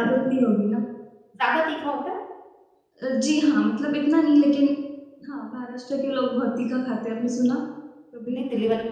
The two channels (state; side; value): identical; both; correlation 1.00